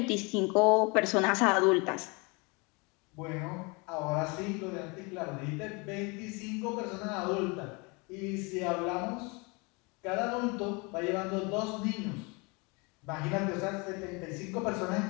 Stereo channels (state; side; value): quieter; right; 28.8 dB